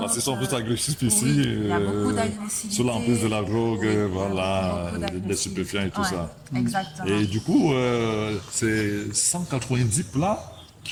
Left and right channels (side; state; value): both; identical; correlation 1.00